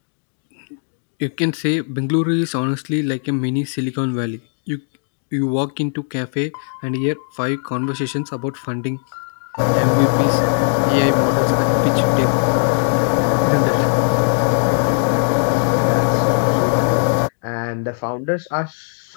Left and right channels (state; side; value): silent; right; 61 dB below the other